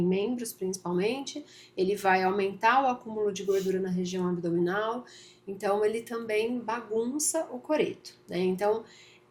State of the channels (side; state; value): both; identical; correlation 1.00